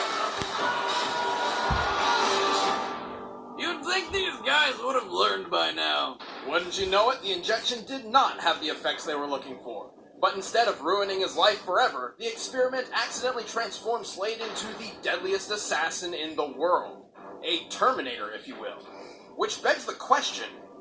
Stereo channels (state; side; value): identical; both; correlation 1.00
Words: You'd think these guys would have learned by now. Wouldn't you know it, the injection did not have the effects they were looking for. But instead of ruining his life forever, the experiment accidentally transformed Slade into the deadliest assassin in the world. A Terminator, if you will. Which begs the question,